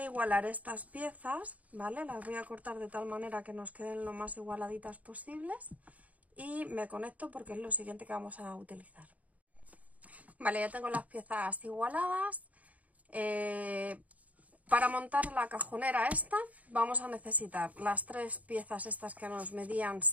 igualar estas piezas, ¿vale? Las voy a cortar de tal manera que nos queden lo más igualaditas posibles. Y me conecto porque es lo siguiente que vamos a utilizar. Vale, ya tengo las piezas igualadas. Para montar la cajonera esta vamos a necesitar las 3 piezas estas que nos medían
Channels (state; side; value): late; left; 0.071 ms